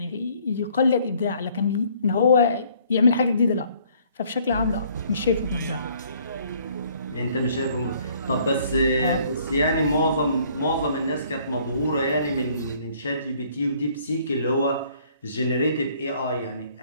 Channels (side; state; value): both; inverted; correlation -0.61